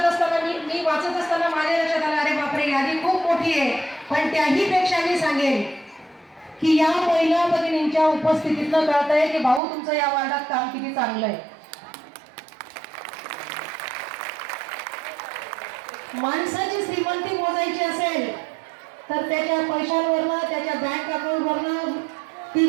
असताना मी वाचत असताना माझ्या लक्षात आलं, अरे बापरे, यादी खूप मोठी आहे. पण त्याही पेक्षा मी सांगेन की या महिला भगिनींच्या उपस्थितीतनं कळतंय की भाऊ तुमचं या वार्डात काम किती चांगलं आहे. माणसाची श्रीमंती मोजायची असेल तर त्याच्या पैशांवरनं, त्याच्या बँक अकाउंटवरनं ती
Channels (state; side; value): drops out; left; at 9.6 s